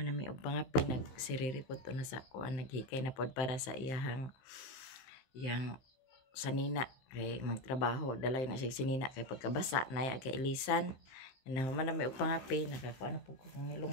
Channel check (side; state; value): right; late; 15 ms